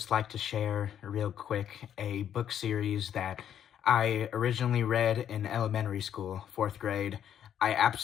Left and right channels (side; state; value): right; quieter; 9.7 dB